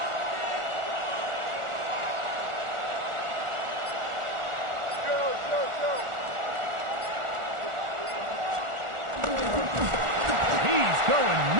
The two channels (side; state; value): left; late; 1.4 ms